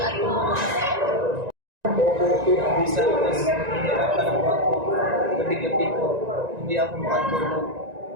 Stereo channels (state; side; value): late; left; 1.9 ms